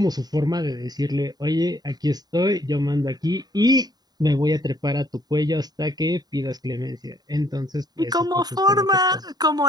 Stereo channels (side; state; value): left; late; 0.19 ms